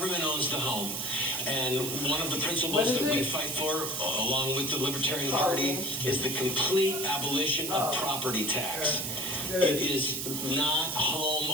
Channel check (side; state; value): right; noise; hiss, 3 dB below the sound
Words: owns the home. And one of the principles that we fight for, along with the Libertarian Party, is the complete abolition of property tax. It is not home